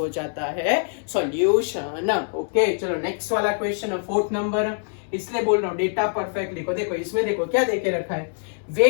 जाता है सॉल्यूशन। ओके चलो नेक्स्ट वाला क्वेश्चन, 4th नंबर, इसलिए बोल रहा हूँ डेटा परफेक्ट लिखो। देखो इसमें देखो क्या देके रखा है,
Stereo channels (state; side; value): silent; right; 63 dB below the other